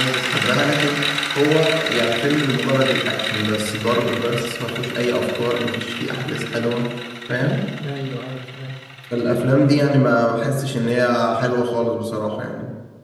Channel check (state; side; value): identical; both; correlation 1.00